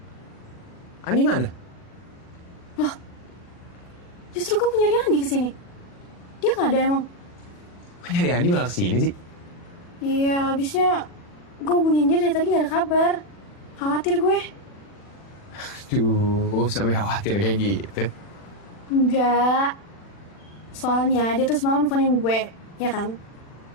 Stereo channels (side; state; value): right; late; 40 ms